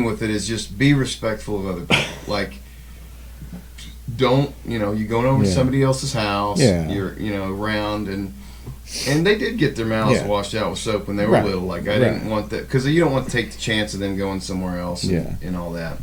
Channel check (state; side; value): identical; both; correlation 1.00